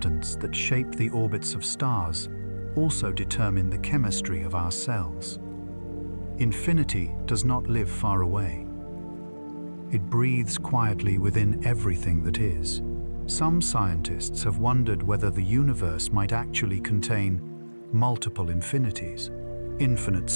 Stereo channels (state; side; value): inverted; both; correlation -1.00